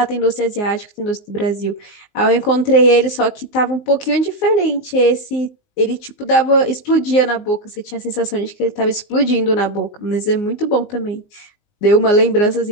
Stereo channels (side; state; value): right; late; 19 ms